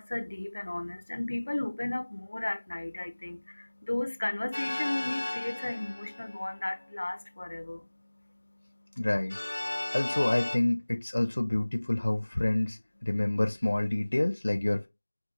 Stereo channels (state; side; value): inverted; both; correlation -1.00